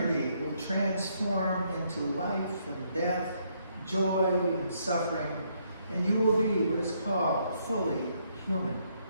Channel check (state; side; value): inverted; both; correlation -0.72